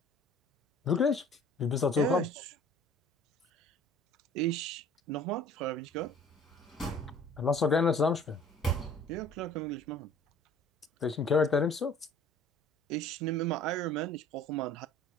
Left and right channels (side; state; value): both; normal; correlation 0.50